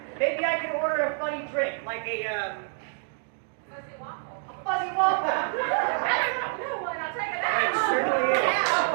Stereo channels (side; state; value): left; silent; 60 dB below the other